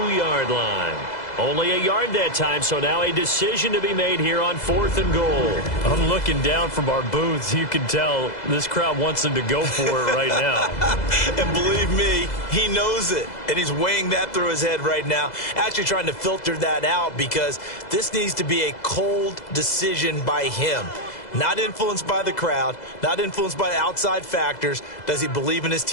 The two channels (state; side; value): late; right; 2.0 ms